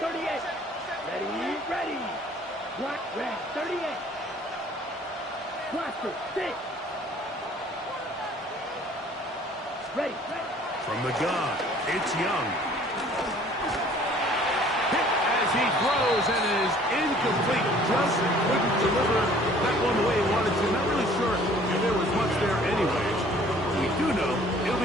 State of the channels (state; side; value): normal; both; correlation 0.54